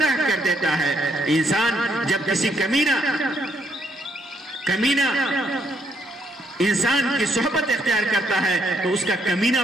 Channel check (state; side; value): normal; both; correlation 0.73